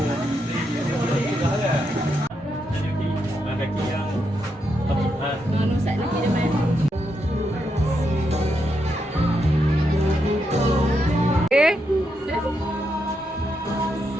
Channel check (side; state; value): both; normal; correlation 0.82